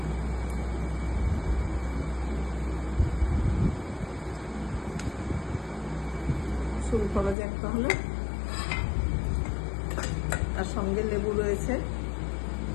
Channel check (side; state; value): right; drops out; at 7.4 s